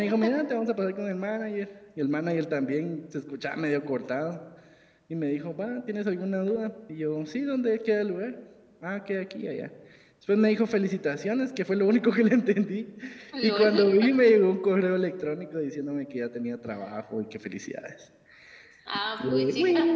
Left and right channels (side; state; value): both; identical; correlation 1.00